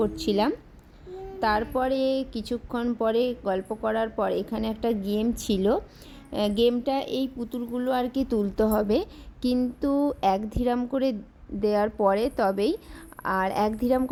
তারপরে কিছুক্ষণ পরে গল্প করার পর এখানে একটা গেম ছিল। গেমটা এই পুতুলগুলো আর কি তুলতে হবে, কিন্তু 1 দিরহাম করে দেওয়ার পরে তবেই, আর 1 দিরহাম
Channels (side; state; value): both; identical; correlation 1.00